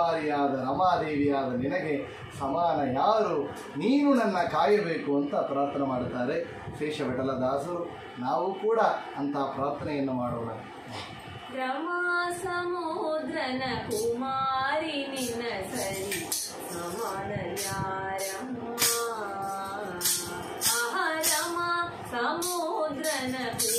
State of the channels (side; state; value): both; identical; correlation 1.00